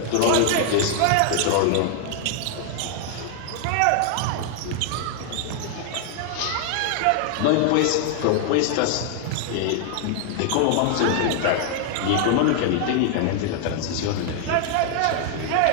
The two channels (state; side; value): different; both; correlation 0.00